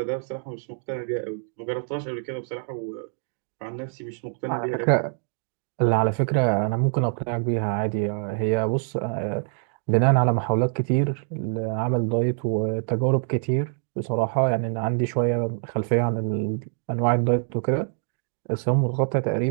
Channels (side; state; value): left; silent; digital silence